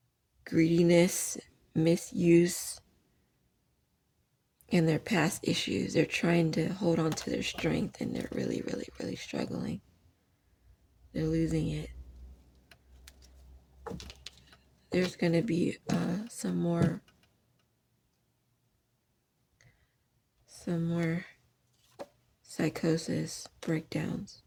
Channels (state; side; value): identical; both; correlation 1.00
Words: greediness, misuse, and their past issues. They're trying to hold on to their strength and they're really, really, really struggling. They're losing it. There's going to be some more psychosis, breakdowns,